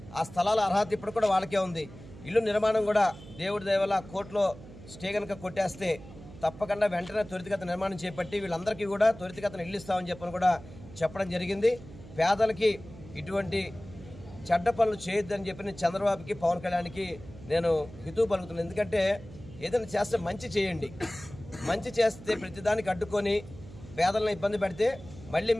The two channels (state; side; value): noise; right; hum, 17 dB below the sound